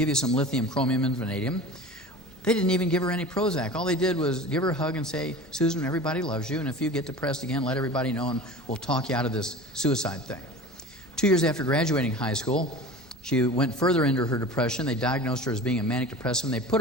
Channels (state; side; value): normal; both; correlation 0.36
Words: you some lithium, chromium, and vanadium." They didn't even give her any Prozac. All they did was give her a hug and say, "Susan, everybody loves you, and if you get depressed again, let everybody know, and we'll talk you out of this suicide thing." 2 years after graduating high school, she went further into her depression. They diagnosed her as being a manic depressive, and they put